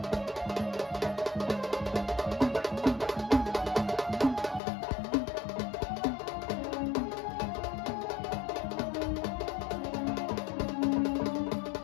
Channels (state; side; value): drops out; right; at 4.6 s